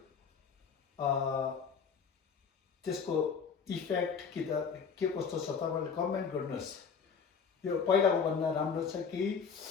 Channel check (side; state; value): right; quieter; 6.1 dB